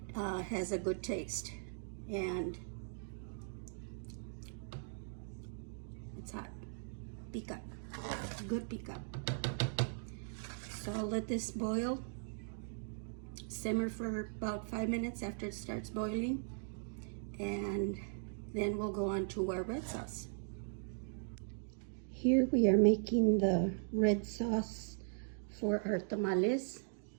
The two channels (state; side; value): silent; left; digital silence